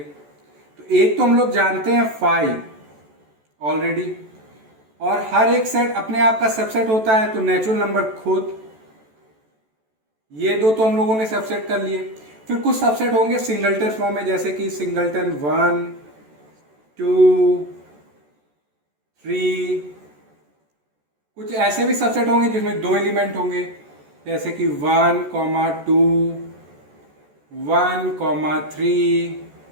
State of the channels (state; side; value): late; left; 14 ms